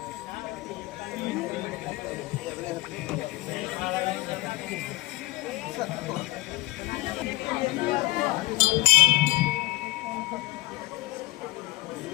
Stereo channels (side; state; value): right; quieter; 19.5 dB